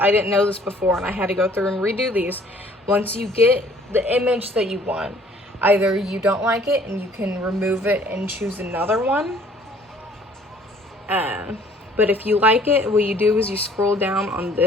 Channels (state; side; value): normal; both; correlation 0.57